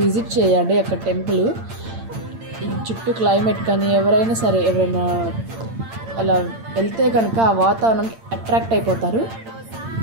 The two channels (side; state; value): left; late; 8.8 ms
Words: విజిట్ చేయండి అక్కడ టెంపుల్. ఈ చుట్టూ క్లైమేట్ కానీ ఎవరైనా అలా వెళ్తే కనుక ఆ వాతావరణానికి అట్రాక్ట్ అయిపోతారు.